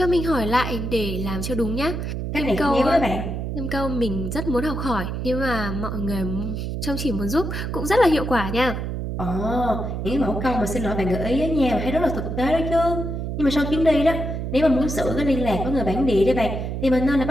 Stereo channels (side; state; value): right; noise; hum, 4 dB below the sound